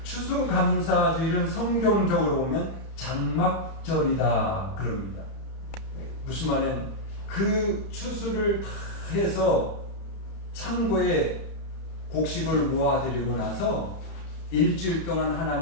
추수감사주일은 성경적으로 보면 장막절이다 그럽니다. 무슨 말은 그 추수를 다 해서 창고에 곡식을 모아드리고 나서 일주일 동안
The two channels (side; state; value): right; late; 31 ms